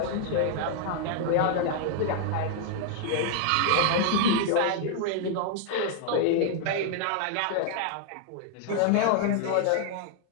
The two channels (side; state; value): both; different; correlation 0.00